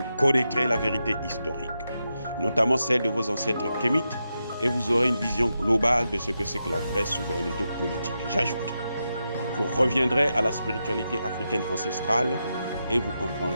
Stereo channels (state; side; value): inverted; both; correlation -0.87